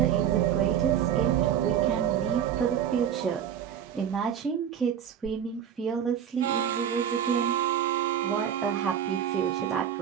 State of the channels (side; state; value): left; quieter; 9.1 dB